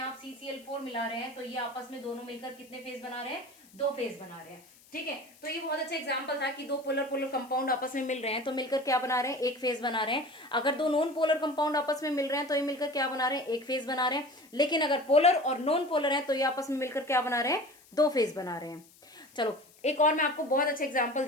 CCl4 मिला रहे हैं, तो ये आपस में दोनों मिलकर कितने फेज बना रहे हैं, 2 फेज बना रहे हैं, ठीक है। तो ये बहुत अच्छा एग्जांपल था कि दो पोलर पोलर कंपाउंड आपस में मिल रहे हैं तो मिलकर क्या बना रहे हैं, एक फेज बना रहे हैं। अगर दो नॉन पोलर कंपाउंड आपस में मिल रहे हैं तो ये मिलकर क्या बना रहे हैं, एक फेज बना रहे हैं। लेकिन अगर पोलर और नॉन पोलर है तो ये आपस में मिलकर क्या बना रहे हैं, 2 फेज बना रहे हैं। चलो एक और मैं आपको बहुत अच्छा एग्जांपल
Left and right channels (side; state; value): left; noise; hiss, 26 dB below the sound